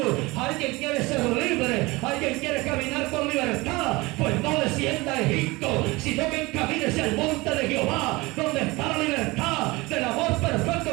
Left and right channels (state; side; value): quieter; left; 22.8 dB